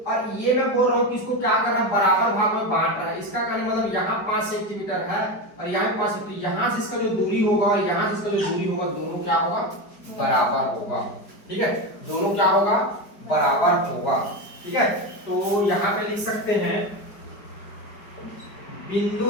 और ये मैं बोल रहा हूं कि इसको क्या करना, बराबर भाग में बांट रहा है। इसका कहने मतलब यहाँ 5 सेंटीमीटर है और यहाँ 5 सेंटीमीटर, यहाँ से इसका जो दूरी होगा और यहाँ से इसका जो दूरी होगा, दोनों क्या होगा, बराबर होगा, ठीक है, दोनों क्या होगा, बराबर होगा, ठीक है। तो यहाँ पे लिख सकते हैं बिंदु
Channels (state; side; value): late; right; 4.9 ms